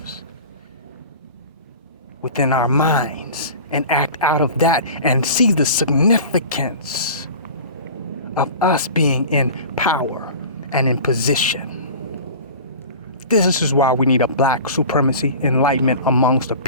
within our minds and act out of that and see the significance of us being in power and in position. This is why we need a black supremacy enlightenment amongst the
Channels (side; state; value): both; inverted; correlation -0.38